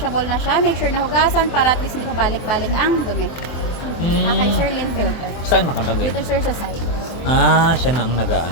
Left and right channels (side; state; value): right; late; 24 ms